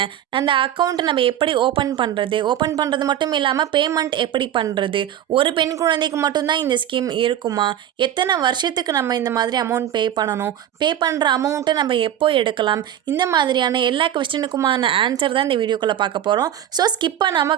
அந்த அக்கௌண்ட்டை நம்ம எப்படி ஓப்பன் பண்ணுறது மட்டும் இல்லாமல் பேமெண்ட் எப்படி பண்ணுறது, ஒரு பெண் குழந்தைக்கு மட்டும்தான் இந்த ஸ்கீம் இருக்குமா, எத்தனை வருஷத்துக்கு நம்ம இந்த மாதிரி அமௌண்ட் பே பண்ணணும், பே பண்ணுற அமௌண்ட்டை நம்ம எப்போ எடுக்கலாம், இந்த மாதிரியான எல்லா கொஸ்டினுக்குமான ஆன்சர் தான் இந்த வீடியோக்குள்ளே பார்க்க போகிறோம். ஸோ ஸ்கிப்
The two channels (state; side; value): quieter; left; 10.9 dB